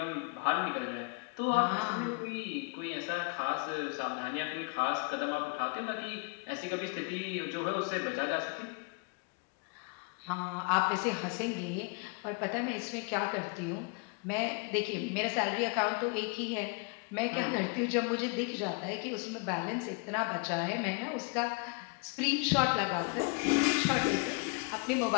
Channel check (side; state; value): right; quieter; 33.7 dB